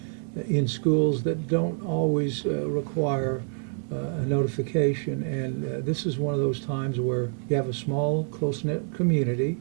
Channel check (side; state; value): left; silent; 58 dB below the other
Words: in schools that don't always require a notification, and this is one of those times where you have a small, close-knit community,